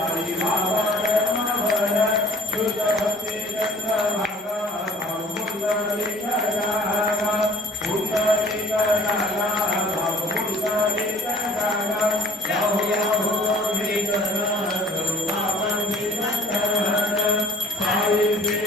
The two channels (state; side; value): normal; both; correlation 0.52